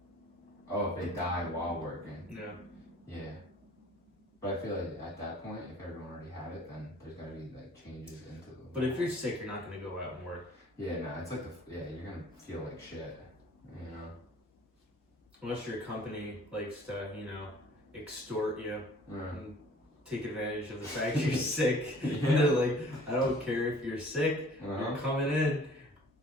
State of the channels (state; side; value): normal; both; correlation 0.52